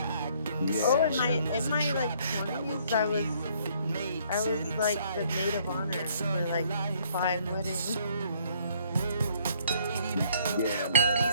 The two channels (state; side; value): inverted; both; correlation -0.64